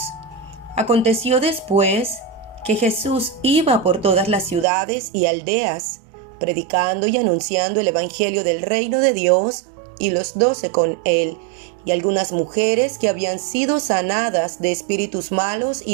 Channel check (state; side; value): drops out; left; at 4.7 s